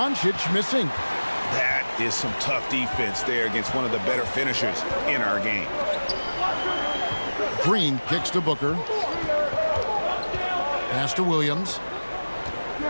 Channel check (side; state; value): both; inverted; correlation -1.00